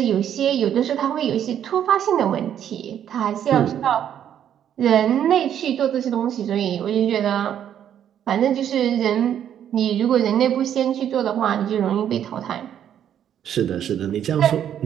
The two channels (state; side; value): quieter; left; 9.8 dB